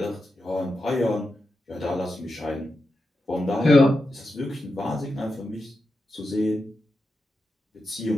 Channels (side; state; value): both; normal; correlation 0.89